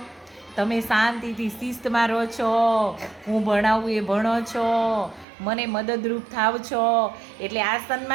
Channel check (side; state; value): left; drops out; at 5.2 s